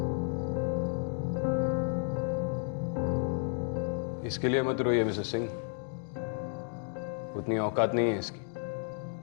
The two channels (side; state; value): right; silent; 56 dB below the other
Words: इसके लिए मत रोइए मिसेस सिंह, उतनी औकात नहीं है इसकी।